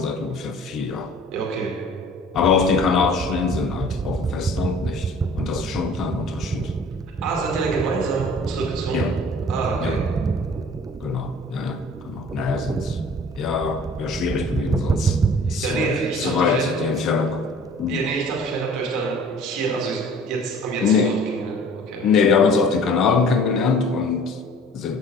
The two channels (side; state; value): both; normal; correlation 0.49